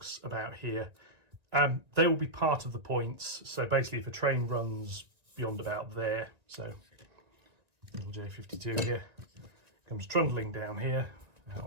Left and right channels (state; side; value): late; left; 1.9 ms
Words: about here. They will be part of the points. So basically if a train runs beyond about there, so little J52 here, comes trundling down here